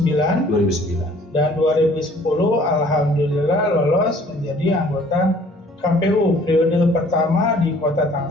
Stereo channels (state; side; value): normal; both; correlation 0.55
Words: Dan 2010 alhamdulillah lolos menjadi anggota KPU periode pertama di Kota